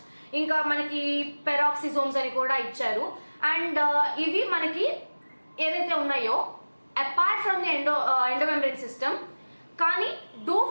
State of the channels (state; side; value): inverted; both; correlation -1.00